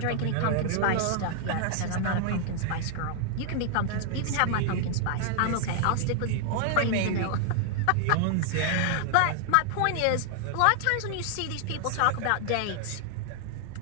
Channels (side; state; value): both; different; correlation 0.00